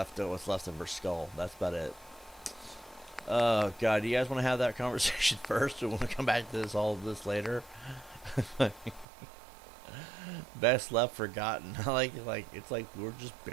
what's left of her skull. That's about it. Oh god, do you guys want to have that conversation first, or want to come back to all of this later? Best left forgotten. like it's like we're just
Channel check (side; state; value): left; drops out; at 9.1 s